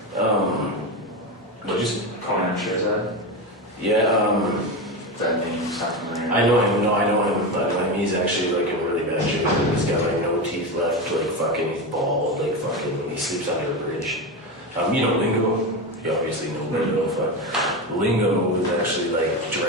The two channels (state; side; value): normal; both; correlation 0.18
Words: What just Conan Shirzad. yeah, That name's not familiar. I know him. No, I know him. He's actually like in really bad shape. He's got like no teeth left. Like fucking, he's bald. Like fucking, he sleeps under a bridge. You know Lingo. You obviously know Lingo. Fuck. Lingo was actually like